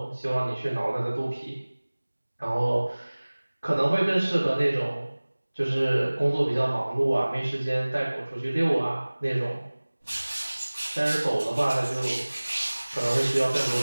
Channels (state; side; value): inverted; both; correlation -1.00